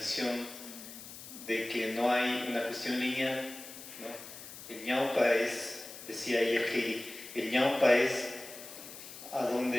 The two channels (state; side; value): noise; left; hiss, 14 dB below the sound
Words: de que no hay una cuestión lineal, ¿no? El ñaupa es, decía ayer Heidi, el ñaupa es a